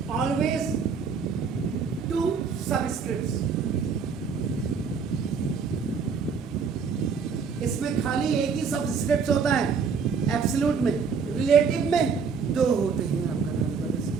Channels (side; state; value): left; quieter; 5.8 dB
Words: ऑलवेज 2 सबस्क्रिप्ट्स, इसमें खाली एक ही सबस्क्रिप्ट होता है, एब्सोल्यूट में, रिलेटिव में 2 होते हैं आपका नाम,